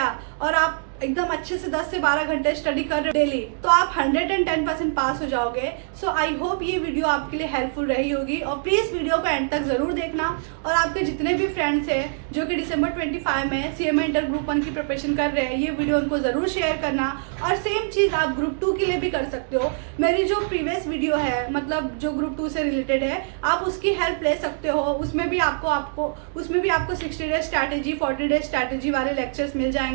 और आप एकदम अच्छे से 10 से 12 घंटे स्टडी कर रहे डेली, तो आप 110% पास हो जाओगे। सो आई होप ये वीडियो आपके लिए हेल्पफुल रही होगी, और प्लीज वीडियो को एंड तक जरूर देखना। और आपके जितने भी फ्रेंड्स हैं जो कि दिसंबर 25 में सीएमए इंटर ग्रुप 1 की प्रिपरेशन कर रहे हैं, ये वीडियो उनको जरूर शेयर करना। और सेम चीज आप ग्रुप 2 के लिए भी कर सकते हो। मेरी जो प्रीवियस वीडियो है, मतलब जो ग्रुप 2 से रिलेटेड है, आप उसकी हेल्प ले सकते हो। उसमें भी आपको 60 डेज स्ट्रैटेजी, 40 डेज स्ट्रैटेजी वाले लेक्चर्स मिल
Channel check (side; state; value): left; silent; digital silence